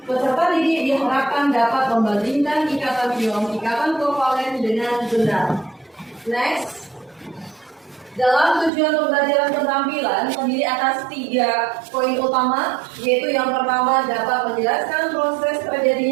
Peserta didik diharapkan dapat membandingkan ikatan ion, ikatan kovalen dengan benar. Next. Dalam tujuan pembelajaran keterampilan terdiri atas 3 poin utama, yaitu yang pertama dapat menjelaskan proses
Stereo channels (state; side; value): drops out; left; at 8.7 s